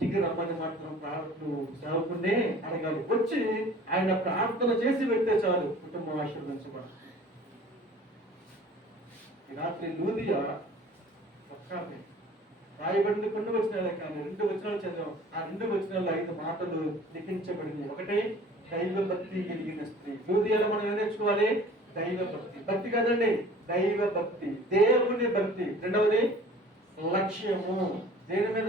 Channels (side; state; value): both; normal; correlation 0.47